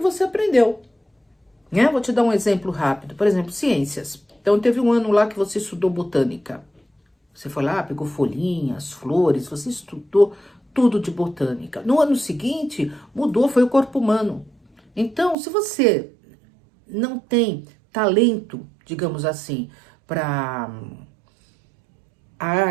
aprendeu. Né? Vou te dar um exemplo rápido. Por exemplo, ciências. Então, teve um ano lá que você estudou botânica. Você foi lá, pegou folhinhas, flores, você estudou tudo de botânica. No ano seguinte, mudou, foi o corpo humano. Então, se você não tem talento, digamos assim, para a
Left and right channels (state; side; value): drops out; left; at 15.4 s